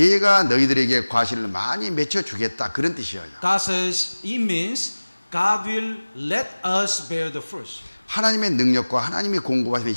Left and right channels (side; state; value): both; inverted; correlation -1.00